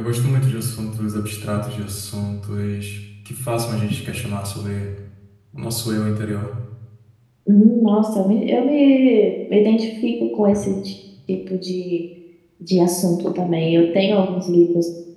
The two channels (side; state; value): both; identical; correlation 1.00